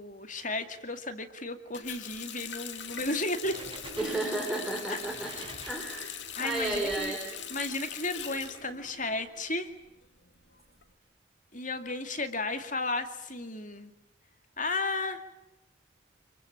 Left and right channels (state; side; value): normal; both; correlation 0.16